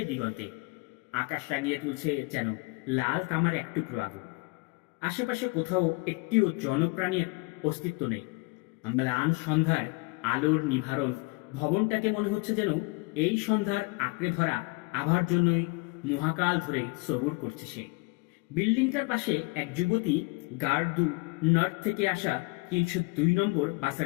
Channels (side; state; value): right; quieter; 28.4 dB